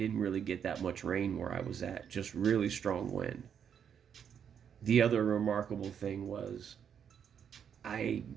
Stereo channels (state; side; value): quieter; left; 8.0 dB